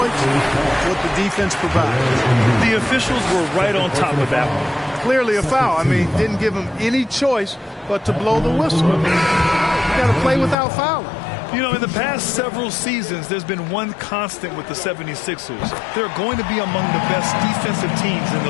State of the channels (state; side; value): drops out; right; at 10.6 s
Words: what the defense provides. The officials were right on top of that one. Clearly a foul. I mean, didn't give him any choice but to blow the whistle. You got to play without fouling. You know, in the past several seasons, there's been one constant with the 76ers. They're going to be among the best defensive teams in the